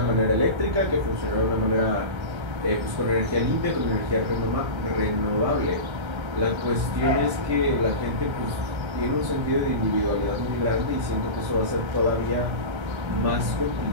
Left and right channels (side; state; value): left; late; 1.3 ms